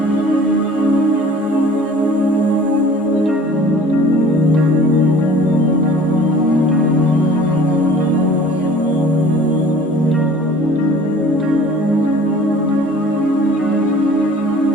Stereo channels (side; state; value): both; normal; correlation 0.48